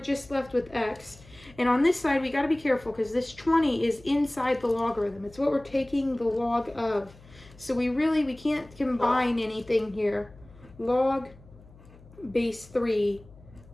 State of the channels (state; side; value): noise; left; hum, 23 dB below the sound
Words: left with x, and on this side, we got to be careful because this 20 is inside the logarithm. It's what we're taking the log of. So we can't combine anything here. Log base 3